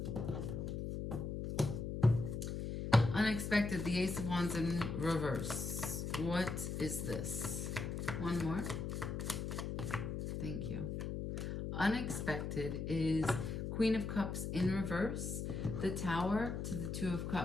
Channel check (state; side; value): noise; left; hum, 3 dB below the sound